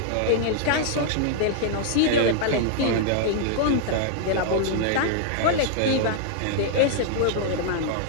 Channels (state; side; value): different; both; correlation -0.01